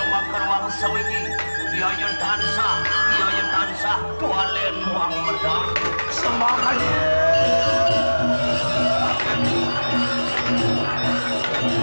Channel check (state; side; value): inverted; both; correlation -1.00